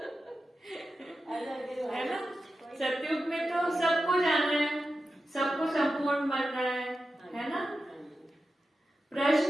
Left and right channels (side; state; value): both; normal; correlation 0.91